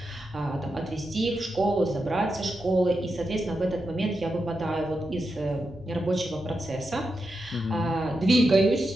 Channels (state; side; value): normal; both; correlation 0.87